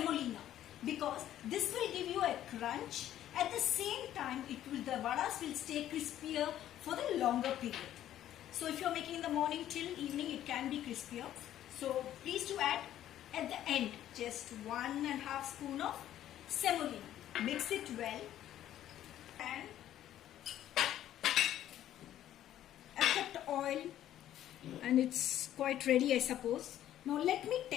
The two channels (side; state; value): right; quieter; 12.1 dB